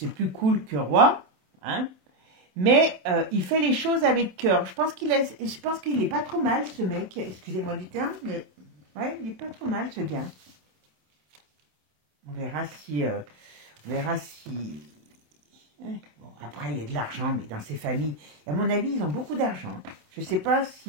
plus cool que roi. Hein, mais il fait les choses avec cœur. Je pense qu'il est pas trop mal, ce mec. Excusez-moi du terme, mais... Ouais, il est pas trop mal, ce gars. On verra si... Ouais. Bon, après, il y a de l'argent, mais dans ces familles, à mon avis, ils ont beaucoup d'argent. Je ne sais pas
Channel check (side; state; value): left; late; 27 ms